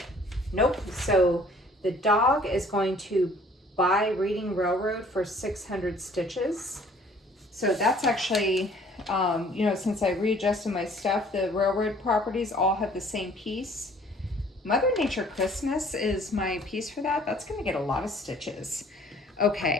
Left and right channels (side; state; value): both; normal; correlation 0.55